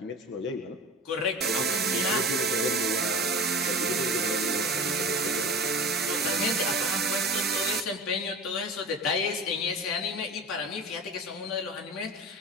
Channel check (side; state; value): both; normal; correlation 0.34